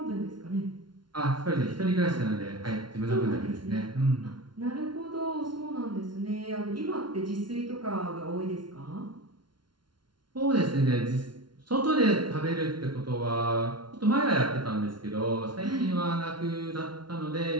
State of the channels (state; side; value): late; left; 0.71 ms